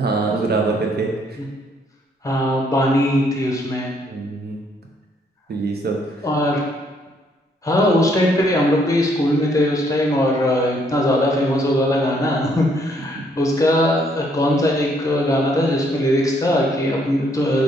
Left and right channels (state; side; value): normal; both; correlation 0.69